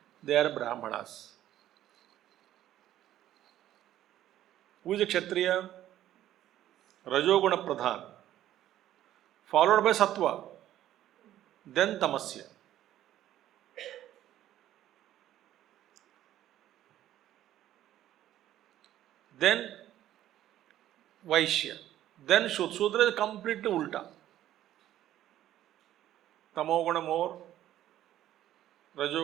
they are Brahmanas. Who is a Kshatriya? Rajoguna Pradhan, followed by Sattva, then Tamasya. Then Vaishya, then Shudra. Shudra is completely ulta. Tamoguna more,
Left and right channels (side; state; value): left; quieter; 12.7 dB